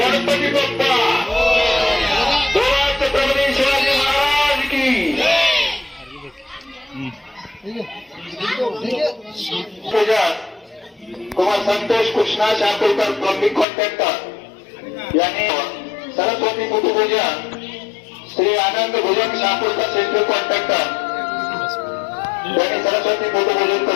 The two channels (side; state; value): right; drops out; at 13.7 s